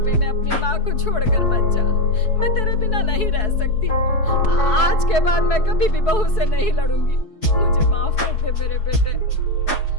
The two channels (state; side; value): late; right; 4.7 ms